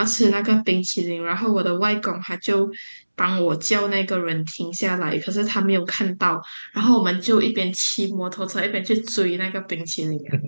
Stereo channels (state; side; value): inverted; both; correlation -1.00